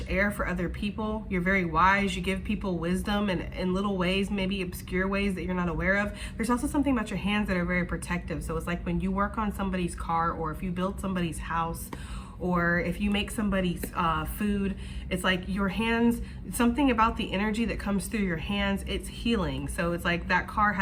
air for other people. You're very wise. You give people wisdom in little ways, maybe obscure ways that you're not aware of. There's also something about your hands that are very protective. So it's like when you work on somebody's car, or if you build somebody's house, or if you make somebody's food, it's like your hands, something about the energy that comes through your hands, it's healing. So it's like that car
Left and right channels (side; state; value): both; identical; correlation 1.00